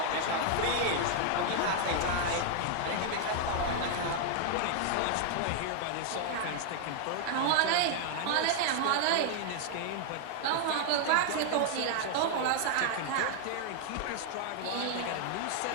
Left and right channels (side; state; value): both; different; correlation 0.00